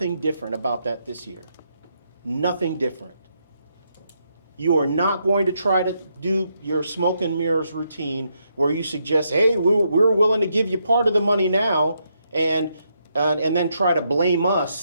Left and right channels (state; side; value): inverted; both; correlation -0.79